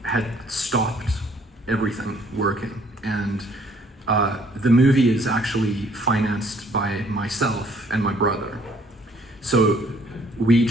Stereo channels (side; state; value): both; normal; correlation 0.61